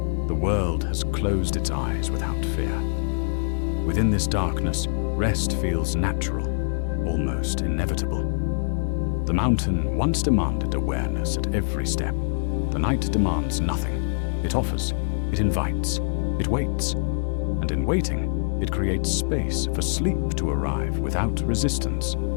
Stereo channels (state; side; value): silent; right; digital silence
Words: world has closed its eyes without fear. Within this darkness, rest feels natural, almost inevitable. The mountain once demanded awareness at every step. The night demands nothing. It offers, it invites, it waits. And in waiting, it creates space for sleep to arrive without resistance.